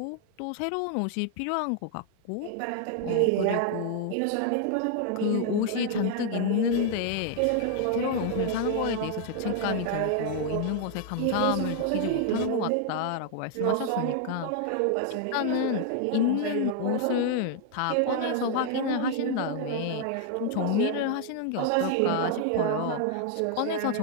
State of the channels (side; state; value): both; different; correlation 0.00